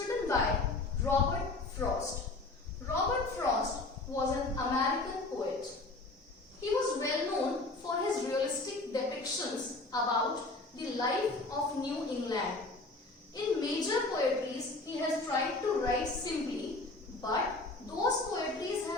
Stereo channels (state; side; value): quieter; right; 3.2 dB